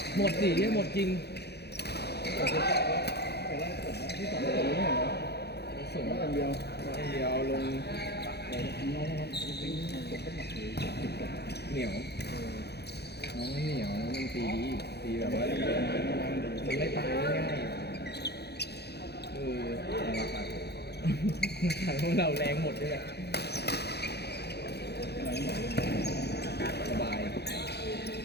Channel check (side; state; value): right; late; 0.48 ms